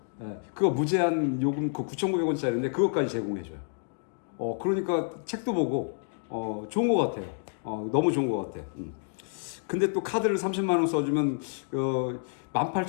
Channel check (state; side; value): silent; right; digital silence